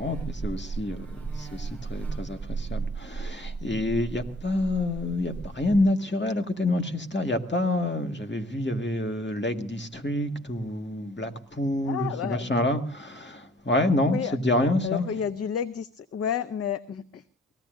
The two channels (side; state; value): both; normal; correlation 0.56